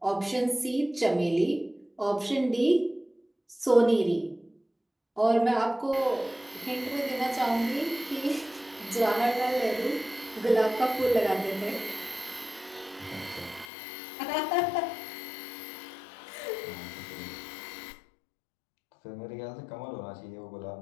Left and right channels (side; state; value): right; drops out; at 13.7 s